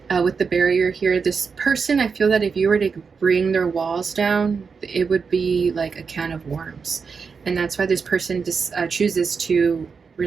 With the barrier here, this person, I feel that if you were to bring their walls down, it would be like a can of worms. And that's why this person just chooses to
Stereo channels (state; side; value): quieter; left; 5.5 dB